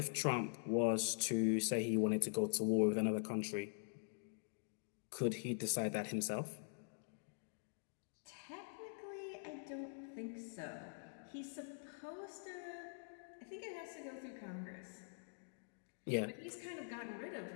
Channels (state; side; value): silent; right; digital silence